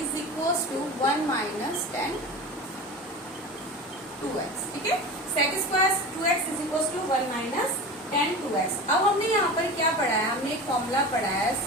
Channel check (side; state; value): both; normal; correlation 0.31